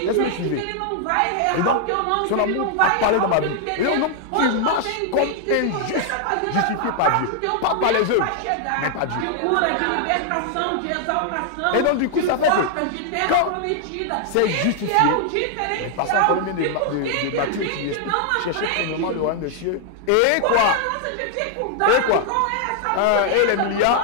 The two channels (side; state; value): both; different; correlation 0.00